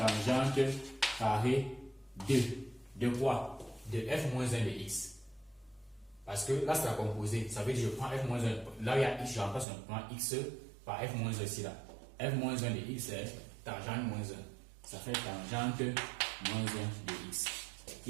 carré de quoi? De f-1 de x. Parce que là, c'est la composée. Ça veut dire que je prends f-1. Là, il y a x, je remplace un point x par f-1 ici là. f-1 de x c'est tangente moins 1. Ça fait tangente moins 1 de x.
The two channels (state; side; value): drops out; left; at 9.7 s